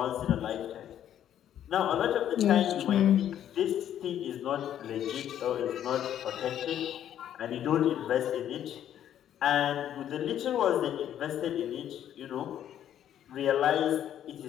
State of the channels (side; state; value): right; quieter; 10.6 dB